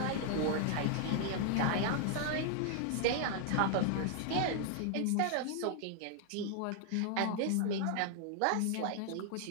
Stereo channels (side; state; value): both; different; correlation 0.00